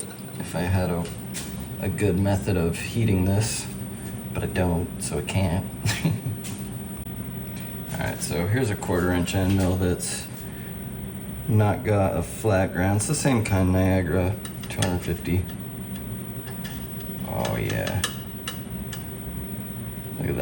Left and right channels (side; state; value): both; identical; correlation 1.00